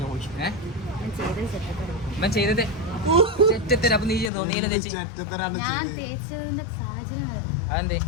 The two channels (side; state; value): right; drops out; at 4.3 s